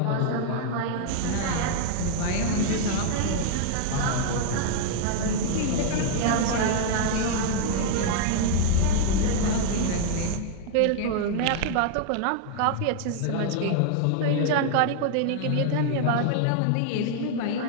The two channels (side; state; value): both; different; correlation 0.00